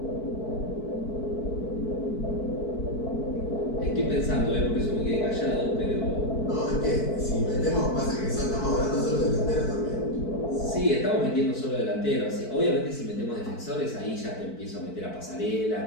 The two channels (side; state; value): right; late; 4.5 ms